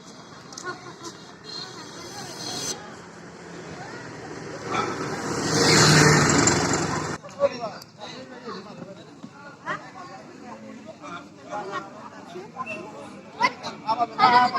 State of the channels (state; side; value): identical; both; correlation 1.00